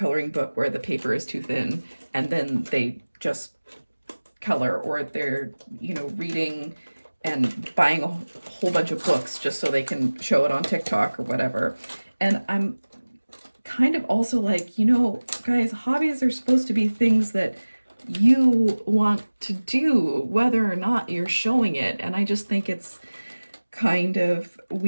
book where the paper is too thin, and then they just color, or they're, you know, reading and buying a whole bunch of books just so they can show it on TikTok or whatever. And I'm kind of also like, you know, guys, hobbies are supposed to be things that you want to do, whether or not you're showing it. And I just think it's kind of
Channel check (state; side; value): inverted; both; correlation -1.00